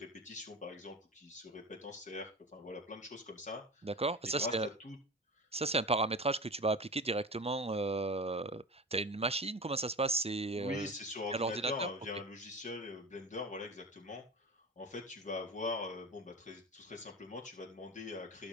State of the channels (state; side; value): normal; both; correlation 0.31